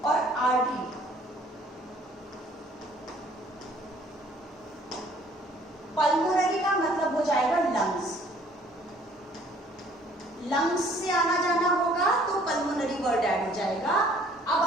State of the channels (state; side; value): normal; both; correlation 0.57